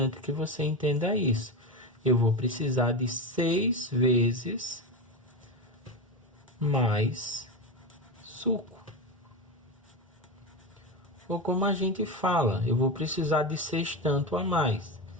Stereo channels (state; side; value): normal; both; correlation 0.18